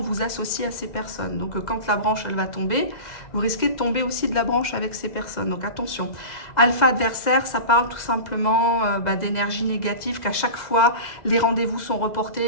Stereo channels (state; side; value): late; right; 2.0 ms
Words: vous associe à ces personnes. Donc quand la branche, elle va tomber, vous risquez de tomber aussi de la branche avec ces personnes. Donc attention. Alpha adversaire, ça parle tout simplement d'énergie négative, qu'à chaque fois, les rendez-vous sont